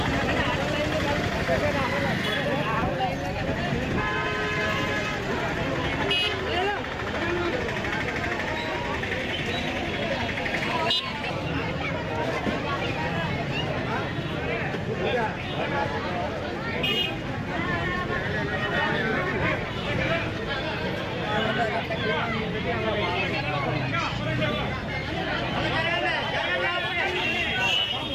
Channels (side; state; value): both; identical; correlation 1.00